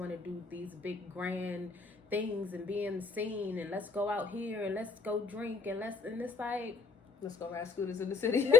to do these big grand things and be in the scene, and let's go out here and let's go drink and it's like, let's go ride scooters in the city.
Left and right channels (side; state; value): right; quieter; 4.7 dB